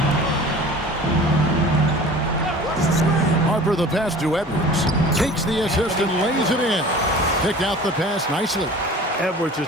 Harper the pass to Edwards. Takes the assist and lays it in. Picked out the pass nicely. Edwards is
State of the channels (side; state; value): both; normal; correlation 0.42